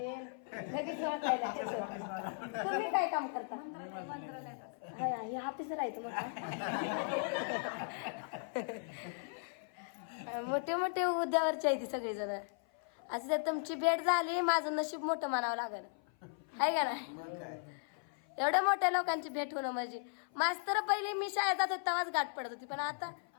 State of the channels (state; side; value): silent; right; 53 dB below the other